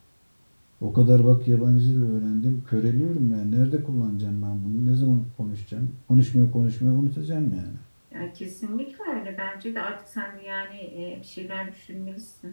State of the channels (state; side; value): inverted; both; correlation -1.00